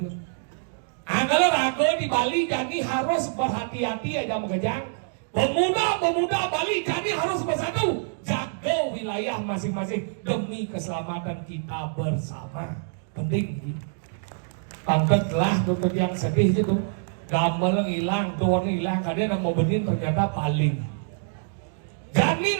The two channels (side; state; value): left; silent; digital silence